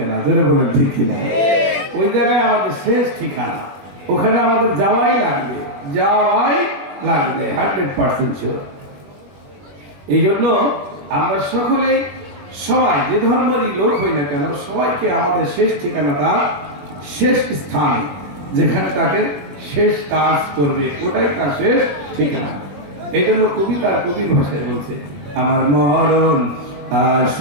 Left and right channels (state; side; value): late; left; 21 ms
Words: জোরে বলেন ঠিক কিনা ওই জায়গায় আমাদের শেষ ঠিকানা ওখানে আমাদের যাওয়াই লাগবে 100% শিওর এই জন্য আমরা সকলেই সবাই যে ধর্মেরই লোক হই না কেন সবাইকে আমাদের শেষ ঠিকানাটা শেষ স্থান যেখানে তাকে শেষ কাজ করবে ওটাই তার শেষ ঠিকানা এই জন্য কবি তার কবির ভাষায় বলছে আমার মরণ